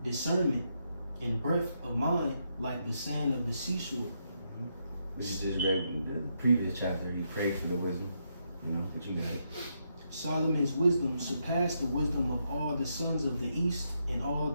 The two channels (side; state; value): both; inverted; correlation -0.80